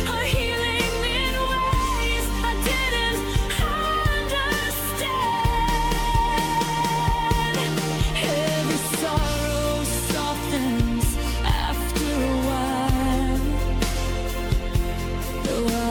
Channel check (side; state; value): both; identical; correlation 1.00